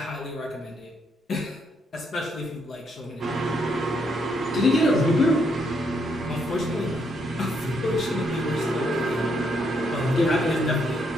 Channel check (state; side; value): normal; both; correlation 0.75